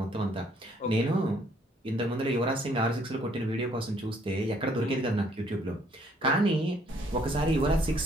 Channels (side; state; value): both; normal; correlation 0.64